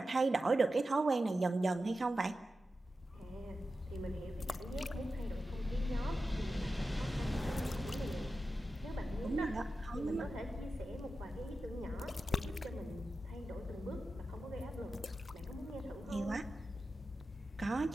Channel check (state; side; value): normal; both; correlation 0.92